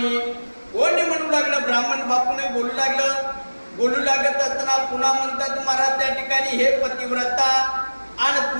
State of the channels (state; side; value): inverted; both; correlation -1.00